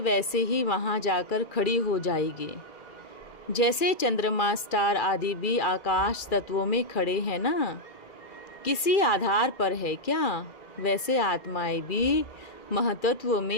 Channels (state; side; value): late; right; 2.4 ms